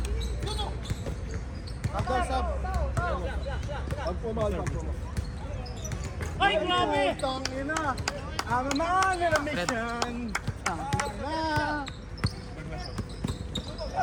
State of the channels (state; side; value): identical; both; correlation 1.00